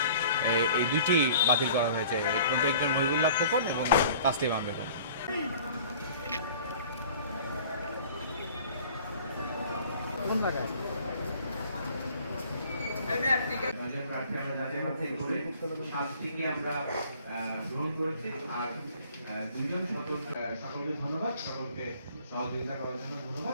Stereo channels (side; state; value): both; inverted; correlation -0.50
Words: এই দুইটি বাতিল করা হয়েছে। একজন মহিবুল্লাহ খোকন এবং তাসলিমা বেগম। আমরা গ্রহণ করেছি। আর 2জন সকলকে ধন্যবাদ, সকলকে সহযোগিতা করার জন্য